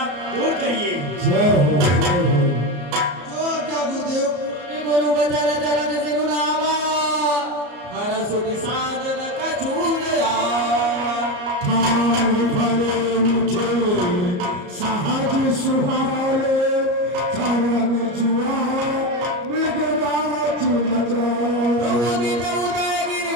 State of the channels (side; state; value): left; late; 34 ms